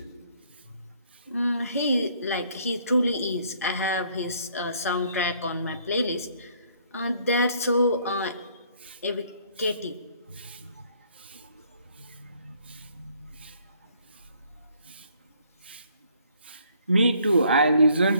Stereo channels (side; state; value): both; inverted; correlation -0.63